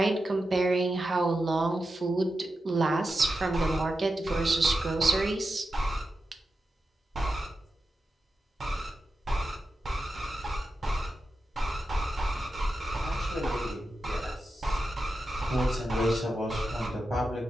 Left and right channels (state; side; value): normal; both; correlation 0.90